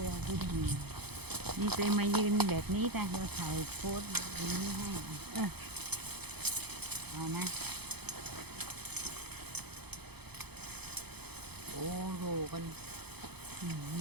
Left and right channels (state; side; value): late; left; 0.98 ms